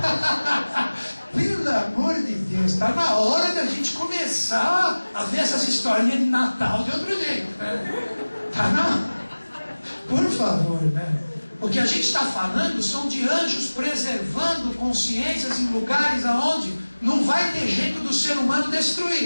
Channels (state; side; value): inverted; both; correlation -1.00